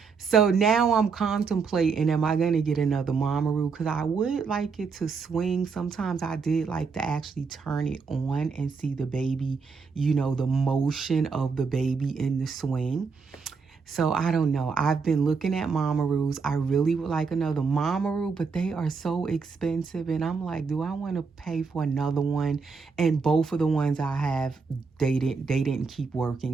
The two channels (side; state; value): left; quieter; 5.1 dB